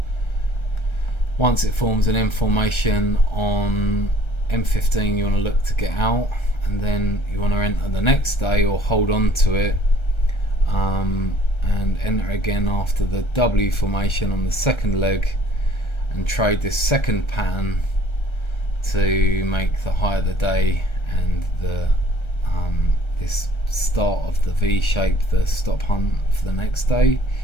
Once it forms an M formation on M15, you want to look to get out, and then you want to enter the next day or hold on to it, and enter again after the W formation on the second leg, and trade this second pattern to make the high of the day and the this start of the V shape, the stop hunt for the next day,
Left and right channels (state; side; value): late; right; 1.3 ms